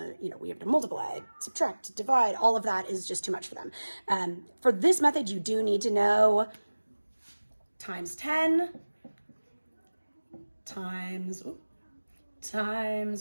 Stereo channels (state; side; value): inverted; both; correlation -1.00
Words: we have to multiply, subtract, divide. All of that is just too much for them. For this method, you do need to know times 10 times